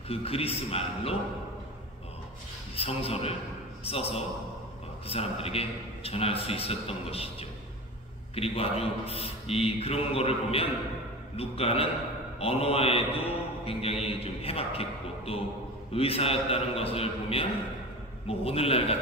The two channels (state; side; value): normal; both; correlation 0.31